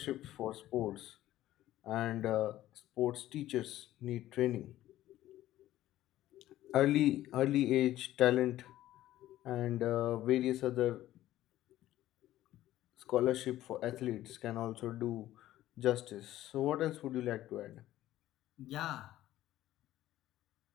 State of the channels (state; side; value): quieter; right; 14.3 dB